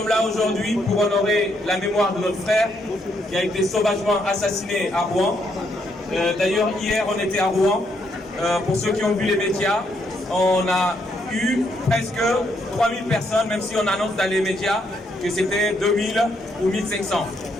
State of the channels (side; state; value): both; normal; correlation 0.75